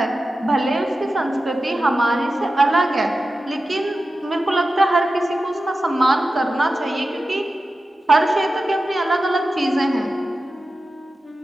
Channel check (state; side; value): normal; both; correlation 0.93